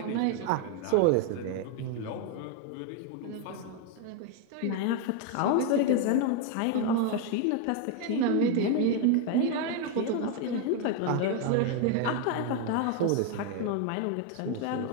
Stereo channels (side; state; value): both; different; correlation 0.01